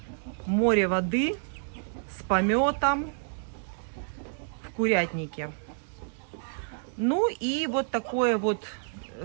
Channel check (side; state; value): left; silent; digital silence